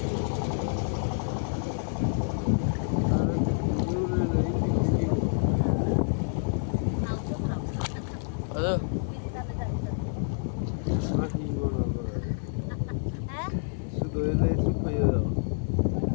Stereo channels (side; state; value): right; silent; digital silence